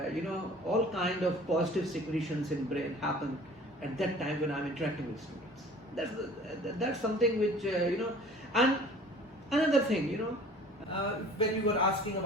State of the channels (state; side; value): normal; both; correlation 0.47